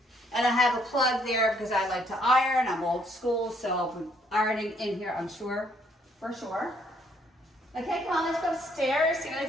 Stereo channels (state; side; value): normal; both; correlation 0.68